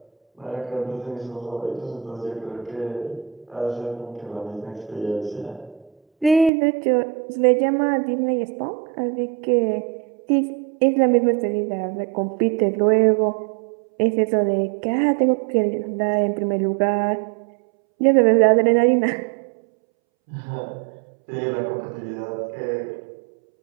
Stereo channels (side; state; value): left; drops out; at 6.5 s